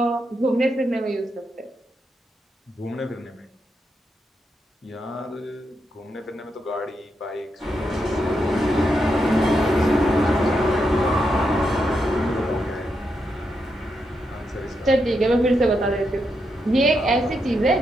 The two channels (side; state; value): both; normal; correlation 0.83